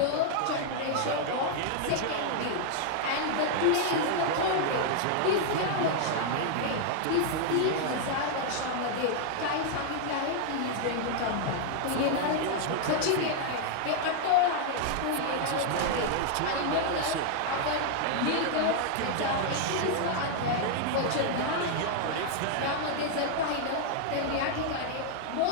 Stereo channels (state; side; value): different; both; correlation 0.00